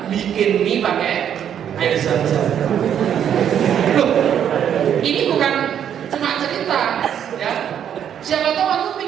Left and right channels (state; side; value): quieter; left; 9.2 dB